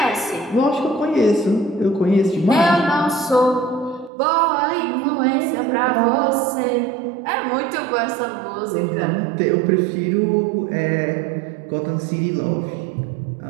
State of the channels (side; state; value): left; drops out; at 4.1 s